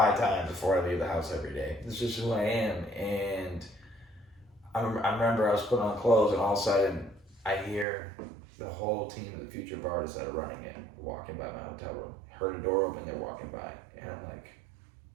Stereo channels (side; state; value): left; drops out; at 7.9 s